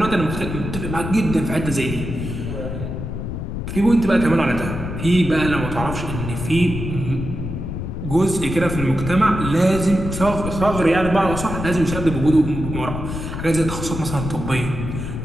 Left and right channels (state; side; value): noise; left; rumble, 6 dB below the sound